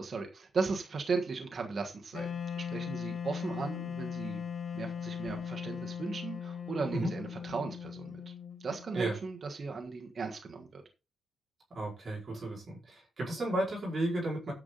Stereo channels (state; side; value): normal; both; correlation 0.82